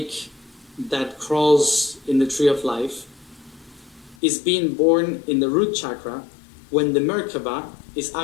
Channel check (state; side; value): drops out; right; at 4.2 s